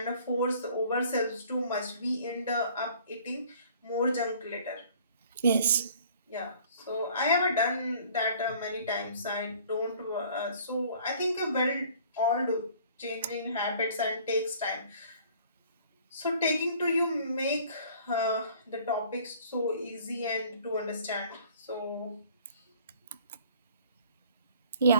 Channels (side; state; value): both; inverted; correlation -0.53